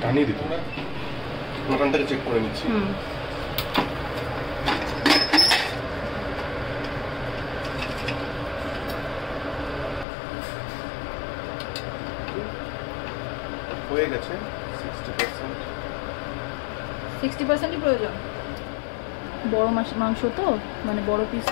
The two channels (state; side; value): drops out; right; at 10.1 s